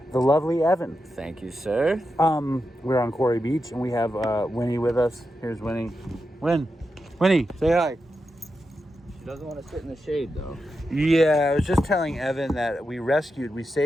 the lovely Evan. Thank you, sir. We're on Quarry Beach, and we have Winnie with us. Here's Winnie. Winnie, say hi. She doesn't want to sit in the shade, though. Yeah, I was just telling Evan that we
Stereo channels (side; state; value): both; normal; correlation 0.88